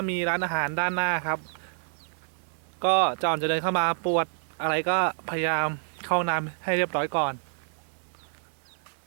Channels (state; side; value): silent; left; digital silence